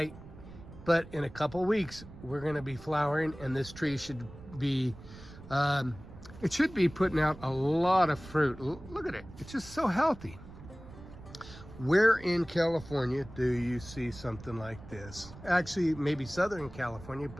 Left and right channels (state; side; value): noise; right; rumble, 17 dB below the sound